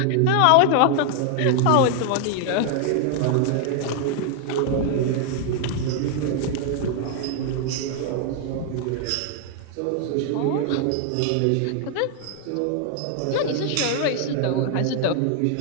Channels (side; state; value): both; different; correlation 0.00